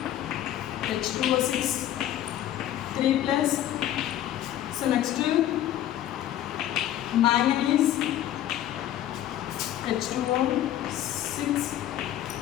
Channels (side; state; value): right; quieter; 12.3 dB